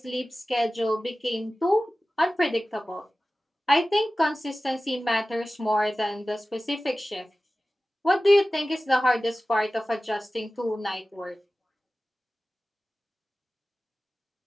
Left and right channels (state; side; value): normal; both; correlation 0.96